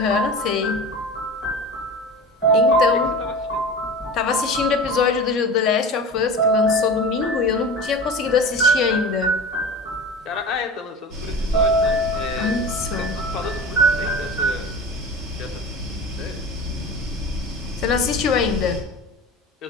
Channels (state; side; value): normal; both; correlation 0.33